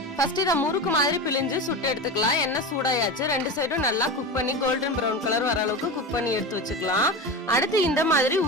ஃபர்ஸ்ட் இத முறுக்கு மாதிரி பிழிஞ்சு சுட்டு எடுத்துக்கலாம். எண்ணெய் சூடாயாச்சு. 2 சைடும் நல்லா குக் பண்ணி கோல்டன் பிரவுன் கலர் வர அளவுக்கு குக் பண்ணி எடுத்து வச்சுக்கலாம். அடுத்து இந்த மாதிரி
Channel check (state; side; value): normal; both; correlation 0.24